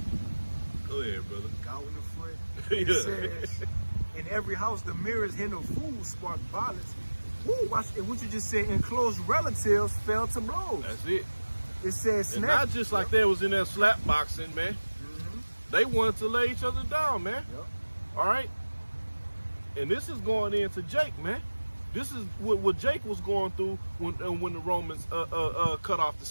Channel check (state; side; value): inverted; both; correlation -1.00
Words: Go ahead, brother. Cow in the foot. Yeah. It says, in every house, the merest hint of food sparked violence. Woo, watch it. What you just said, and close relatives fell to blows. That's it. It says, And not just like they was in there slap boxing, man. They wanted to lay each other down, man. Yep. All right. And this is going into Jake, man. This is what Jake was going through when the Romans cut off the